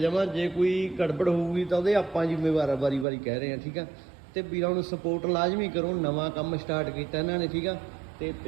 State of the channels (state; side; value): drops out; left; at 3.1 s